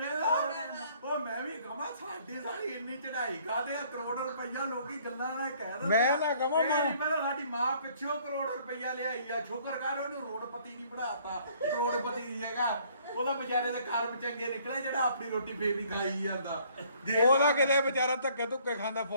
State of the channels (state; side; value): inverted; both; correlation -0.60